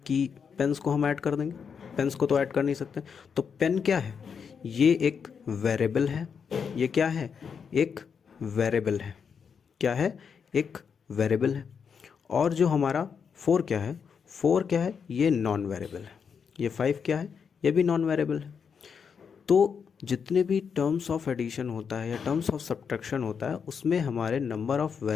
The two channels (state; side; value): quieter; right; 6.5 dB